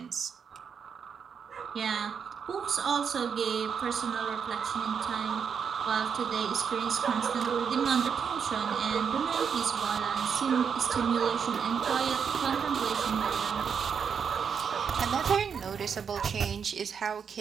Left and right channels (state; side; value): quieter; left; 6.7 dB